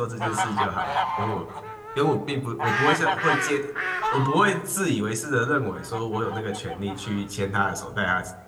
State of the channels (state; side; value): identical; both; correlation 1.00